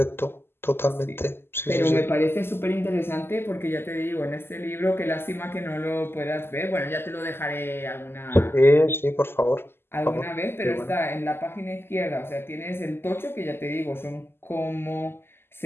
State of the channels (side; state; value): right; late; 0.11 ms